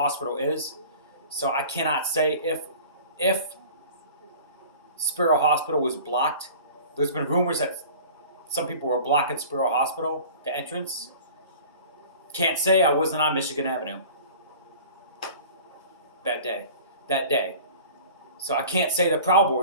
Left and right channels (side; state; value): both; inverted; correlation -0.43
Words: is, so I cannot say if Sparrow Hospital was blocked. There's been rumors that some people were blocking Sparrow Hospital, the entrance. Can't say I wasn't on Michigan Avenue that day. So I can't say the Proud